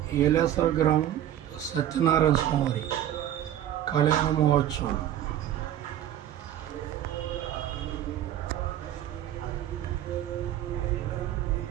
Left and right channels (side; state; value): left; quieter; 11.7 dB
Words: ఏలేశ్వర గ్రామం సత్యనారాయణ స్వామి కళ్యాణ మహోత్సవం